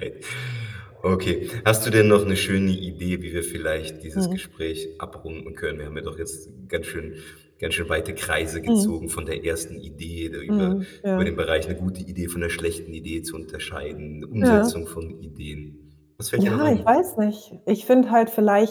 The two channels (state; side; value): identical; both; correlation 1.00